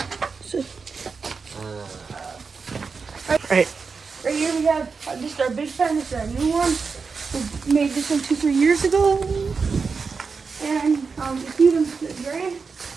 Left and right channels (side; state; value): left; quieter; 5.0 dB